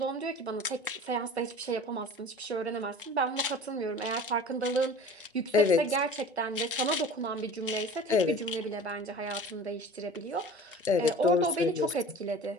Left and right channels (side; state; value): both; normal; correlation 0.40